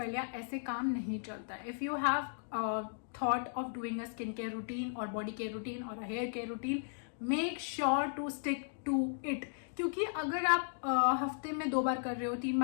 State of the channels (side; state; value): right; silent; digital silence